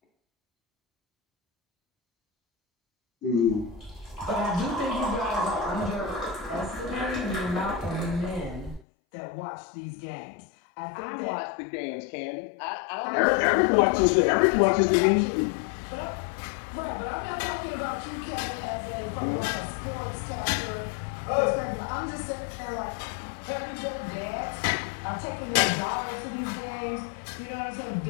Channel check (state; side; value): drops out; right; at 8.8 s